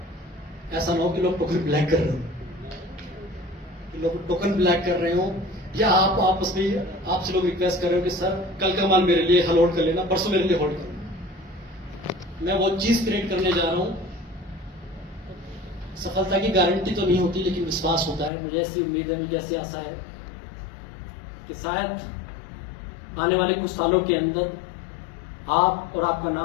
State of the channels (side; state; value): right; drops out; at 18.3 s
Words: ऐसा ना हो कि लोग टोकन ब्लैक कर रहे हो, कि लोग टोकन ब्लैक कर रहे हो, या आप आपस में आपसे लोग रिक्वेस्ट कर रहे हो कि सर कल का माल मेरे लिए होल्ड कर लेना, परसों मेरे लिए होल्ड करो। मैं वो चीज क्रिएट करने जा रहा हूं। सफलता की गारंटी तो नहीं होती, लेकिन विश्वास होता है। मुझे ऐसी उम्मीद है, मुझे ऐसी आशा है कि शायद आने वाले कुछ सालों के अंदर आप और आपका